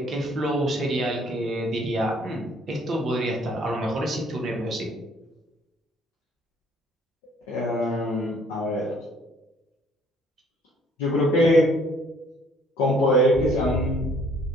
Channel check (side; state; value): both; normal; correlation 0.60